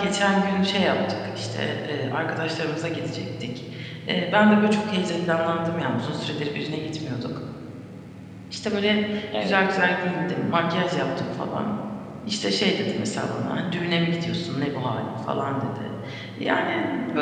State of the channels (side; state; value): both; identical; correlation 1.00